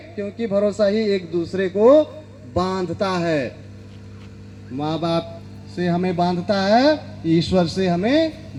क्योंकि भरोसा ही एक दूसरे को बांधता है। माँ बाप से हमें बांधता है, ईश्वर से हमें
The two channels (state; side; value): identical; both; correlation 1.00